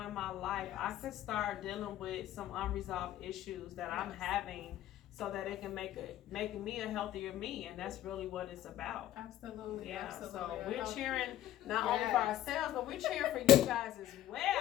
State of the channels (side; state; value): right; quieter; 13.0 dB